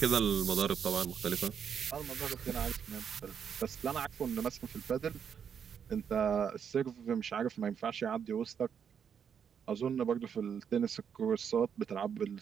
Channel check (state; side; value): quieter; left; 7.6 dB